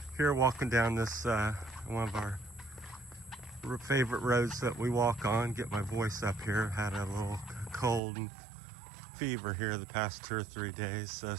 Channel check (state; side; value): drops out; left; at 8.0 s